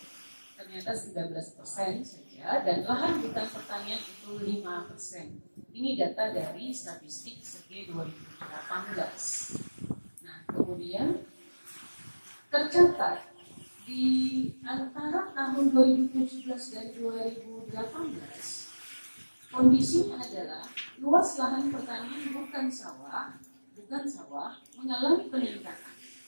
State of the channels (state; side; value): inverted; both; correlation -1.00